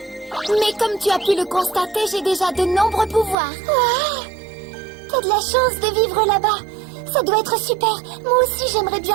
Mais comme tu as pu le constater, j'ai déjà de nombreux pouvoirs. T'as de la chance de vivre là-bas. Ça doit être super. Moi aussi, j'aimerais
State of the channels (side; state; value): left; drops out; at 3.4 s